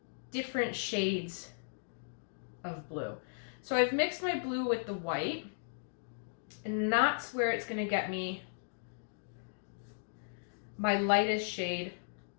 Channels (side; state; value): right; silent; digital silence